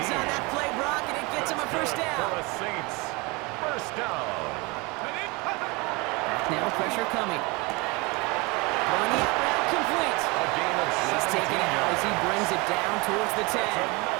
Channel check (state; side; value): quieter; left; 26.6 dB